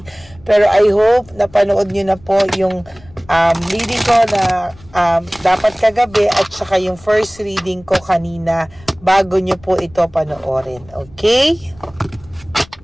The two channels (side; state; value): left; noise; rumble, 24 dB below the sound